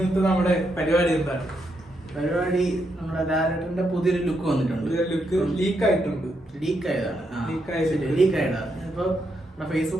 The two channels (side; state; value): both; normal; correlation 0.80